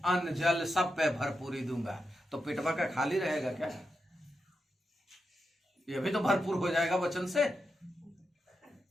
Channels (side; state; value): both; normal; correlation 0.87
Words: अन्न जल सब पे भरपूरी दूंगा। तो पेटवा का खाली रहेगा क्या? ये भी तो भरपूर हो जाएगा वचन से।